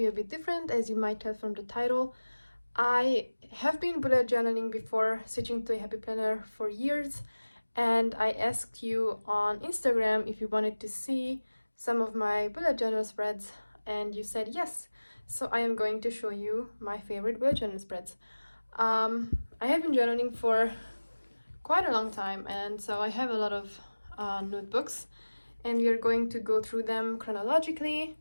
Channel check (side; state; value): both; inverted; correlation -1.00